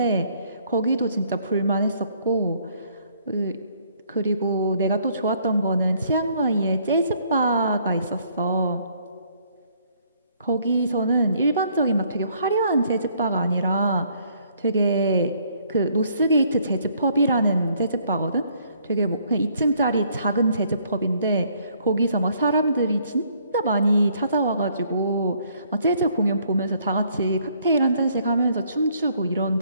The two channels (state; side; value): inverted; both; correlation -0.65